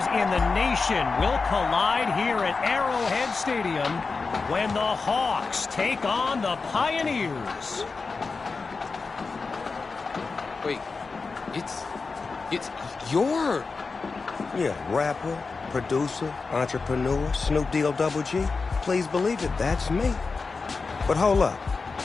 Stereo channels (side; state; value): right; quieter; 4.4 dB